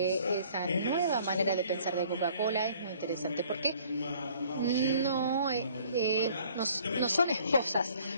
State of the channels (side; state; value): both; inverted; correlation -0.56